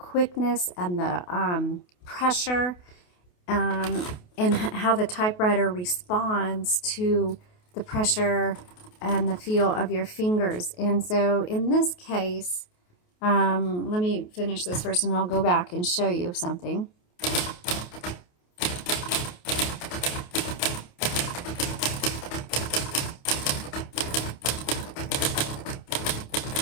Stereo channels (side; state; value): right; late; 28 ms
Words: and the pressure and how the typewriter responds to the pressure and the feel of your fingers. And so in this case, let me finish this first and I'll go back and show you something.